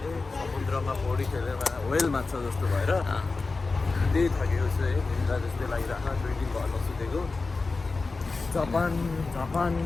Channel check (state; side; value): quieter; right; 3.9 dB